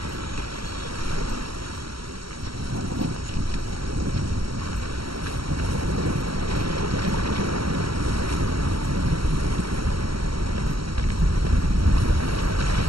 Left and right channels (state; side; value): late; left; 0.75 ms